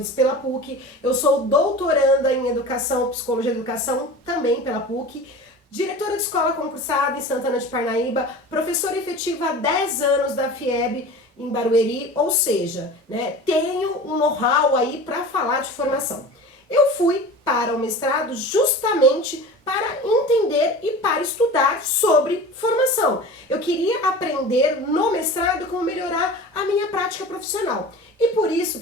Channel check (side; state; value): both; normal; correlation 0.36